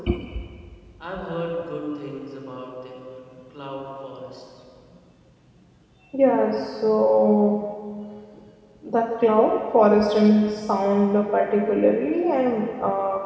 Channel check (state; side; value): identical; both; correlation 1.00